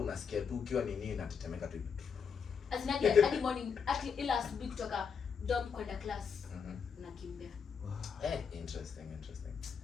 tu ukiwa nini inatetemeka tu. Asinaje early morning ila asubuhi kutoka dorm kwenda class unakimbia. Interesting.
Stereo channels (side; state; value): right; quieter; 6.4 dB